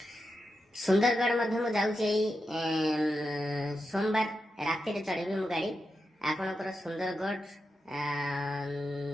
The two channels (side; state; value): both; normal; correlation 0.88